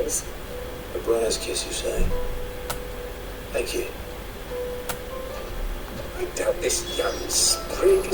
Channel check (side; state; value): both; identical; correlation 1.00